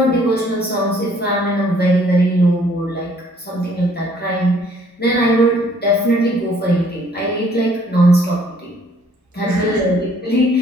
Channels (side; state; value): both; normal; correlation 0.61